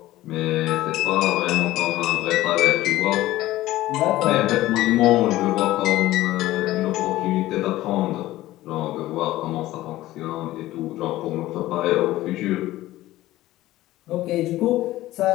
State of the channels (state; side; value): quieter; right; 16.1 dB